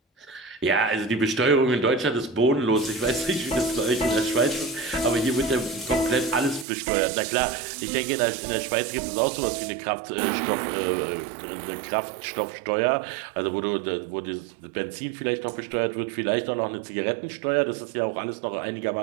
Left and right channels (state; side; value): drops out; left; at 6.7 s